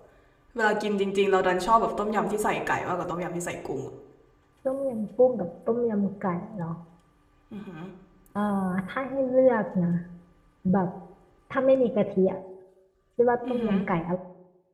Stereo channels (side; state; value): both; identical; correlation 1.00